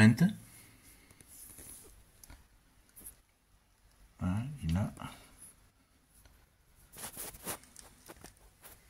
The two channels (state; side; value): identical; both; correlation 1.00